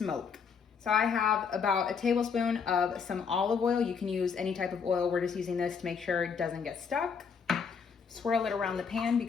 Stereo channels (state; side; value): quieter; right; 6.2 dB